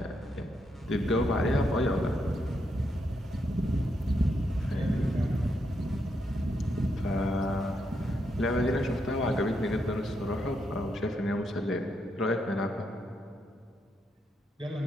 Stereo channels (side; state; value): both; normal; correlation 0.80